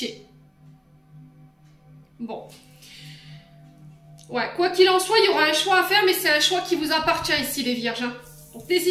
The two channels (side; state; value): both; identical; correlation 1.00